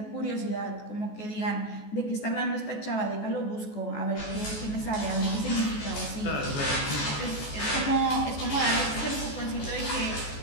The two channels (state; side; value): late; right; 14 ms